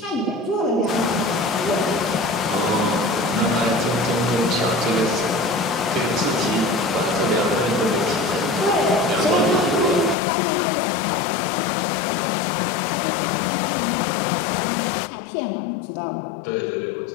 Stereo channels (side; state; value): right; drops out; at 10.2 s